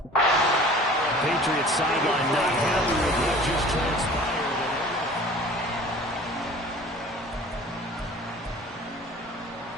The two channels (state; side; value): normal; both; correlation 0.45